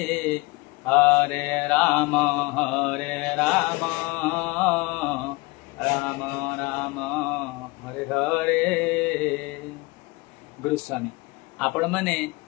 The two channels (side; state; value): right; quieter; 24.8 dB